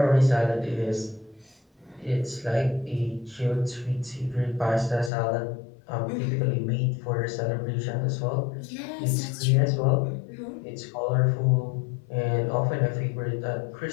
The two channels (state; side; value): drops out; right; at 5.1 s